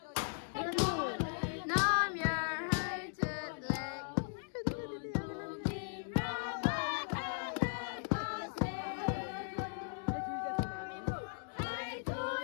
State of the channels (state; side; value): silent; right; digital silence